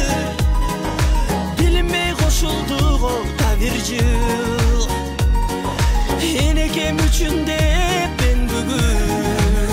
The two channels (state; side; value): identical; both; correlation 1.00